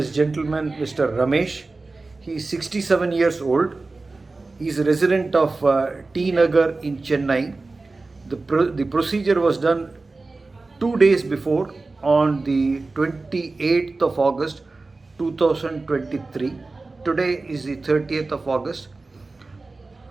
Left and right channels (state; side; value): quieter; left; 3.5 dB